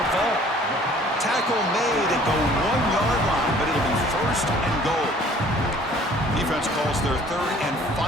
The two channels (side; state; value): both; normal; correlation 0.54